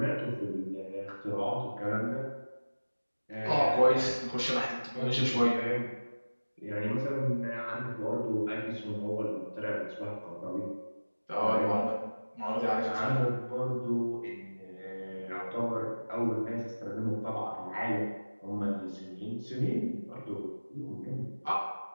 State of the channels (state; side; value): inverted; both; correlation -1.00